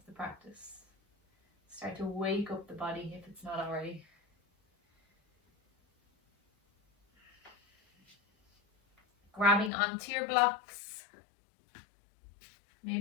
the practice. Start to wake up the body if it's not already. Grabbing onto your blocks.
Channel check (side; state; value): right; drops out; at 9.7 s